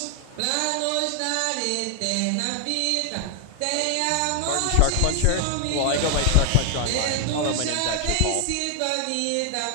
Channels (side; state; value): both; different; correlation 0.00